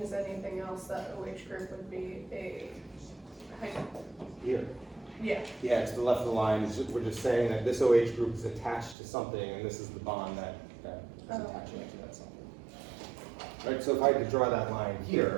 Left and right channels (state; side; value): drops out; left; at 9.0 s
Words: is anything else, that OH group would be a Here. yeah. Yeah, to the left of the line, we're just saying that this OH group is attached to something, and this is the bond that is attaching it to that something. Right, so if I could draw that line